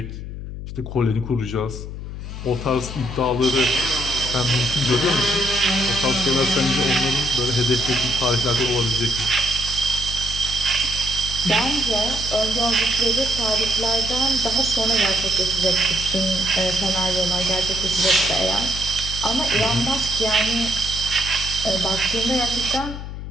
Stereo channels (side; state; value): left; noise; hum, 8 dB below the sound